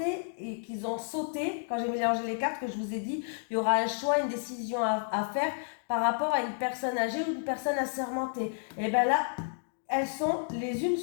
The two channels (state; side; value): silent; right; digital silence